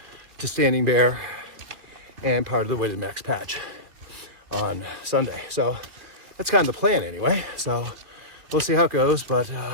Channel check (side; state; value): left; late; 2.7 ms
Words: to Standing Bear and part of the Weighted Max Patch on Sunday. So that's kind of the plan anyway. So we'll see how it goes. But